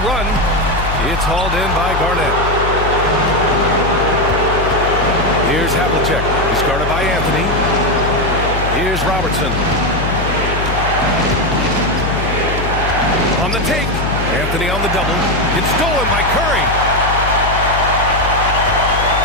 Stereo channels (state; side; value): noise; left; hum, 4 dB below the sound